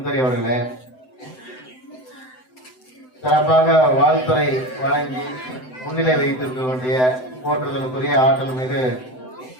அவர்களே, சிறப்பாக வாழ்த்துறை வழங்கி முன்னிலை வைத்திருக்கக்கூடிய போற்றுதலுக்குரிய ஆற்றல் மீது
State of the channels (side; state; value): right; late; 7.8 ms